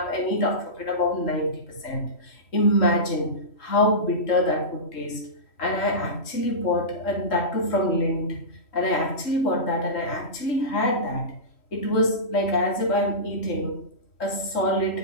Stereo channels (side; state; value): right; late; 3.1 ms